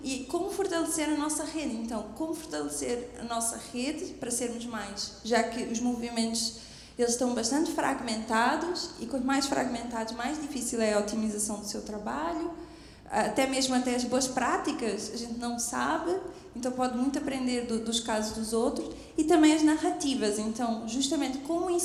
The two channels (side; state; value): both; identical; correlation 1.00